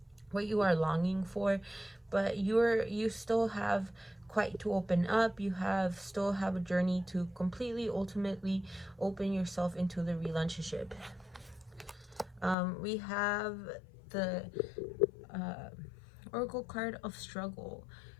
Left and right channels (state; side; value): drops out; right; at 12.6 s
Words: are longing for, but you still have quite to open up. You still have a journey to completely, ultimately open yourself into the relationship. We have the Oracle card of struggle.